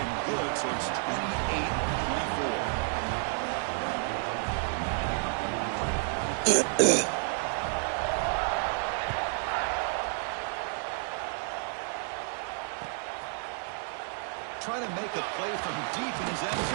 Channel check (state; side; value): silent; left; 57 dB below the other